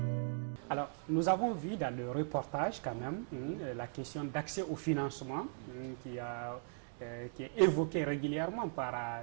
Alors, nous avons vu dans le reportage quand même la question d'accès au financement qui est évoquée régulièrement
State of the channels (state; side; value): silent; left; digital silence